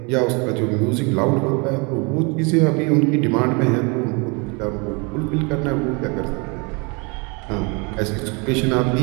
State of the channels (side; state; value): left; quieter; 31.1 dB